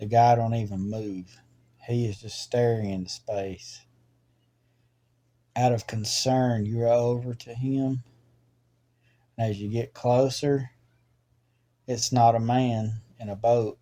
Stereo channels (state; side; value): identical; both; correlation 1.00